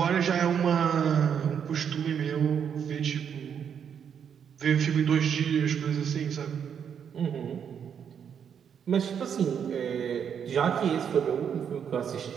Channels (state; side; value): quieter; left; 7.8 dB